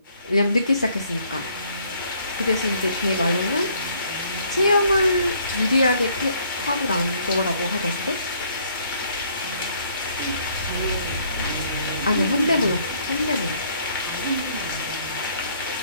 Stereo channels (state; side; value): inverted; both; correlation -0.64